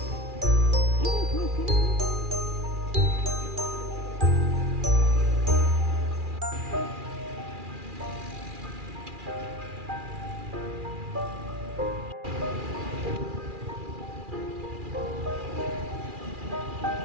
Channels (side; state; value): left; late; 2.4 ms